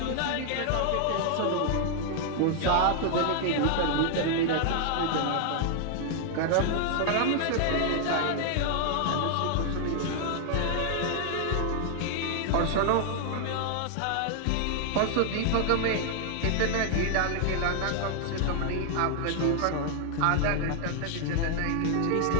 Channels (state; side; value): different; both; correlation 0.00